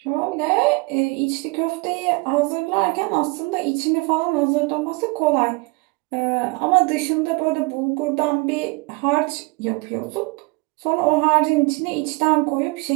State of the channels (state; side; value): quieter; left; 27.3 dB